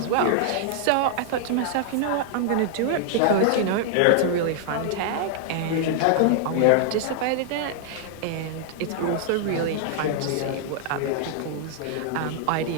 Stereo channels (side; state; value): both; different; correlation -0.01